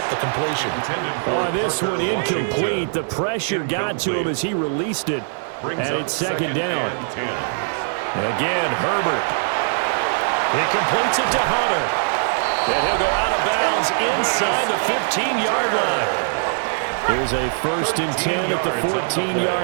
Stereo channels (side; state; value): left; silent; digital silence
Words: the completion. Oh, this one incomplete. The pressure got to him as he released it. And it's 2nd down. Again, Herbert. He completes it to Hunter. And he'll go out of bounds inside the 15-yard line. There's a 1st and 10 at the